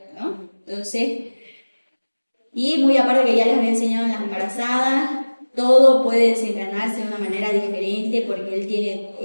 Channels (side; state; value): both; inverted; correlation -1.00